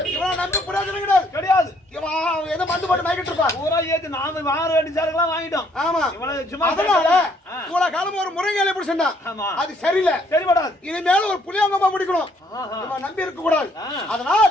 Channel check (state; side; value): normal; both; correlation 0.66